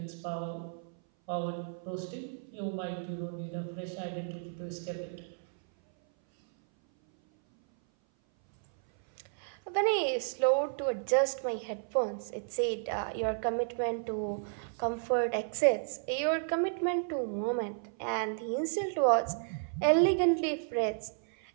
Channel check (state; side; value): silent; left; 56 dB below the other